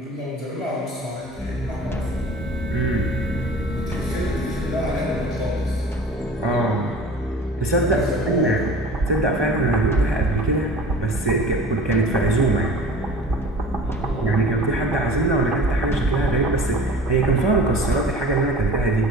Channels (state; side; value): normal; both; correlation 0.42